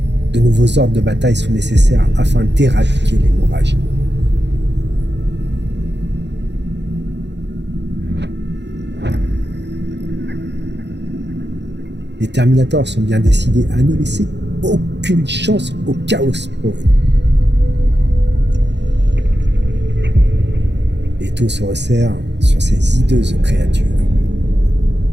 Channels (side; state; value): left; late; 0.51 ms